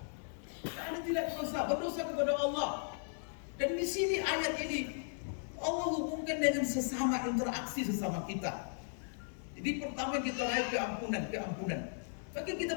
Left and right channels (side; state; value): right; silent; 53 dB below the other